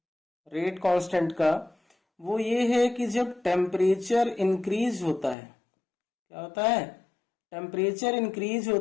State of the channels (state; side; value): drops out; right; at 5.4 s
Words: रेट कांस्टेंट का वो ये है कि जब टेम्परेचर इंक्रीज होता है, क्या होता है? टेम्परेचर इंक्रीज